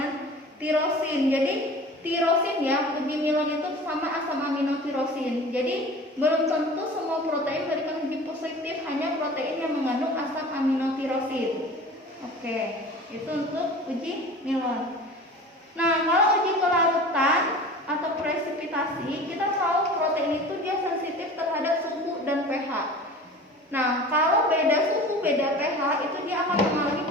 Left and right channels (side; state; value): both; normal; correlation 0.39